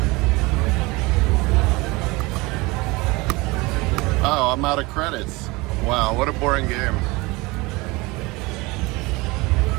Oh, I'm out of credits. Wow, what a boring game.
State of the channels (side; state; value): left; quieter; 23.6 dB